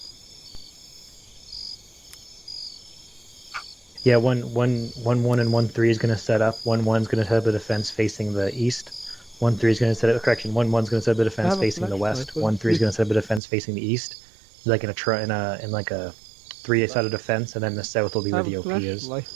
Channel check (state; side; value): drops out; left; at 13.4 s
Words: Yeah, 1-1 and 1-3 is going to set up. 1-1 is going to set up a defense facing the east. 1-3 is going to set up, correction, 1-1 is going to set up a defense facing the west. 1-3 is going to set up a defense facing the east. Like in like a 3-sided defense, and then the south will be where the OP is.